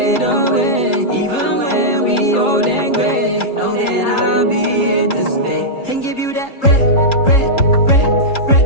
away. Even when we old and gray, know that I'll be here to stay. And give you that red, red, red, red,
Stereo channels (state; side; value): late; right; 3.8 ms